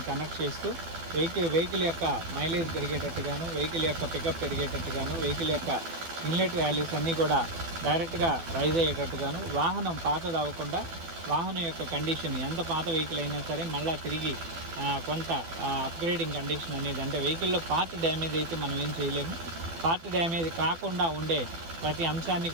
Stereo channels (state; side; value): late; left; 12 ms